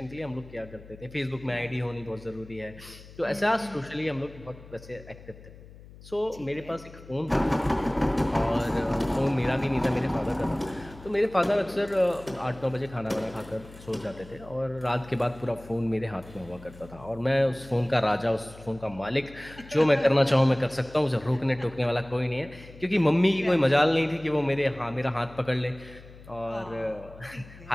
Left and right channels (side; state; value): left; noise; hum, 19 dB below the sound